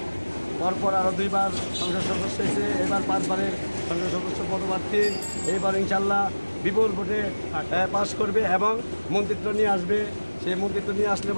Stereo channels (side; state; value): both; inverted; correlation -1.00